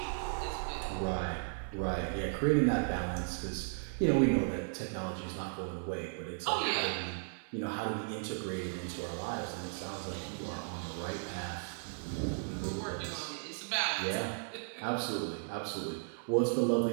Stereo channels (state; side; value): silent; left; 54 dB below the other